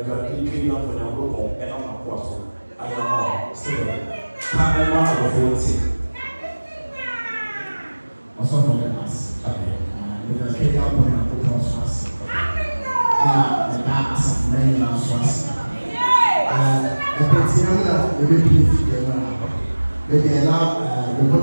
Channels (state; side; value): inverted; both; correlation -1.00